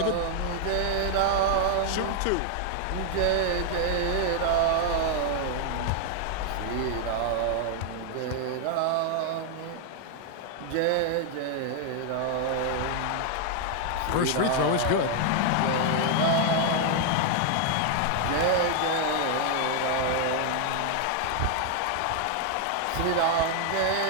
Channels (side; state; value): both; different; correlation 0.00